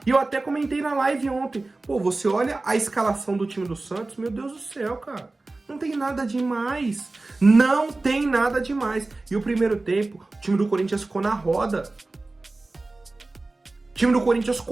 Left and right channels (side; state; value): left; quieter; 3.2 dB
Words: E eu até comentei na live ontem. Pô, você olha a escalação do time do Santos, meu Deus do céu, cara. Não tem nada demais. Não tem nada demais. E o primeiro tempo, o time do Corinthians ficou na roda. O time do Corinthians